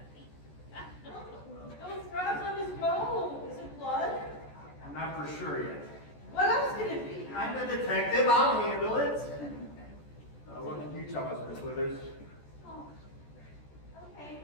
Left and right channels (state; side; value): late; right; 14 ms